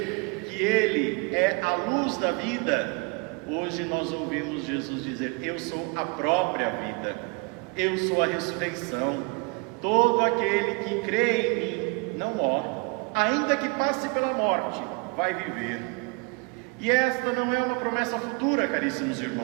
que Ele é a luz da vida, hoje nós ouvimos Jesus dizer: Eu sou a própria vida, eu sou a ressurreição. Todo aquele que crê em mim não morre, ainda que passe pela morte, vai viver. E esta não é uma promessa futura, caríssimos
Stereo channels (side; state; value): left; quieter; 30.2 dB